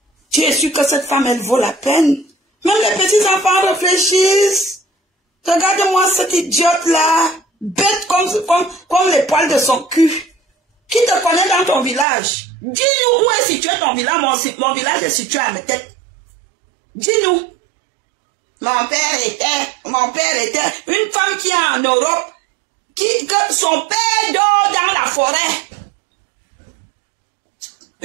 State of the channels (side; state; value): left; drops out; at 12.1 s